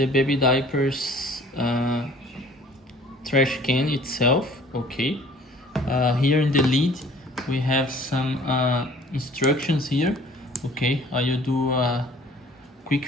diapers trash can itself. Okay, here in the lid we have some instructions here. Okay, I will do a quick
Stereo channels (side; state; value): both; normal; correlation 0.52